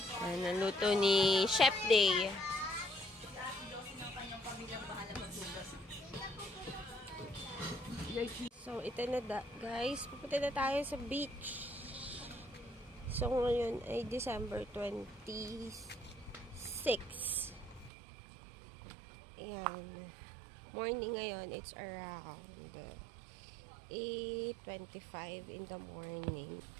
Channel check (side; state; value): left; drops out; at 17.9 s